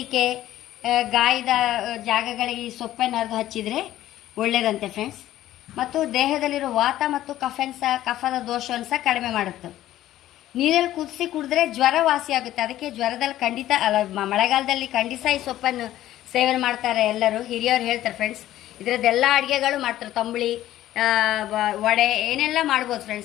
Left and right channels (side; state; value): right; quieter; 13.7 dB